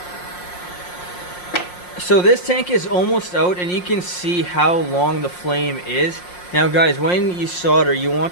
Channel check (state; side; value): late; right; 5.6 ms